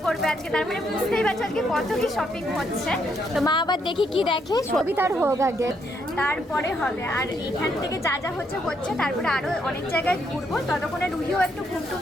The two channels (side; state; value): both; normal; correlation 0.75